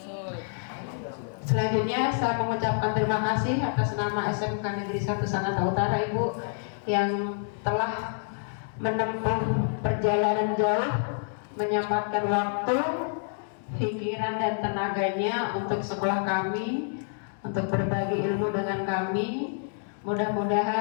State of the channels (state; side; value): silent; right; digital silence